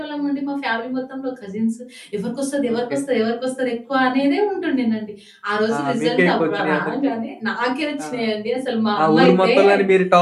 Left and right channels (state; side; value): identical; both; correlation 1.00